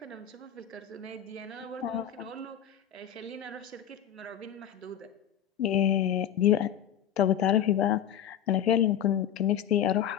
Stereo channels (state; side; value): quieter; right; 9.9 dB